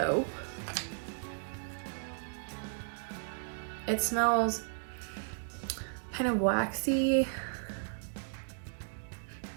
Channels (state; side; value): silent; left; digital silence